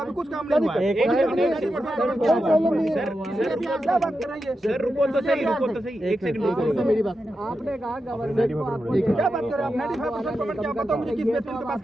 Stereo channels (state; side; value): normal; both; correlation 0.89